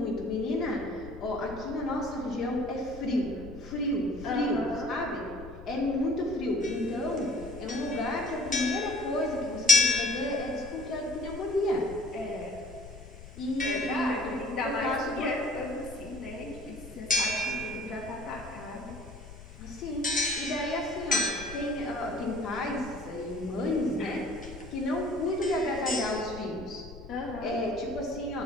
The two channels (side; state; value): left; noise; rumble, 15 dB below the sound